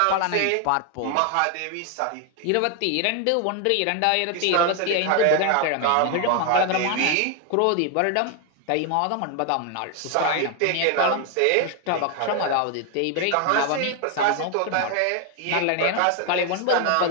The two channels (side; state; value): both; different; correlation 0.01